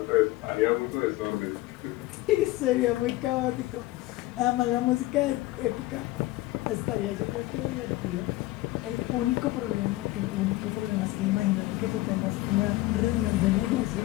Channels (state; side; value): quieter; right; 18.4 dB